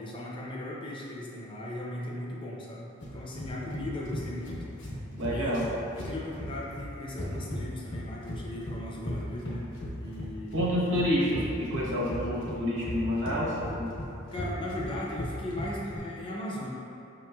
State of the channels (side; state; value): both; normal; correlation 0.55